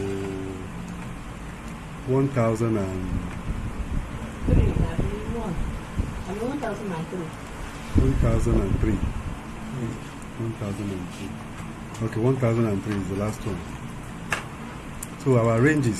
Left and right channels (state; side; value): identical; both; correlation 1.00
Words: 1000 and 1003. 1003. Okay, 1003 is the last one. So our